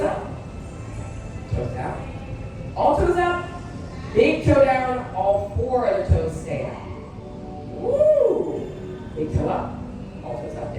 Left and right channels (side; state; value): both; identical; correlation 1.00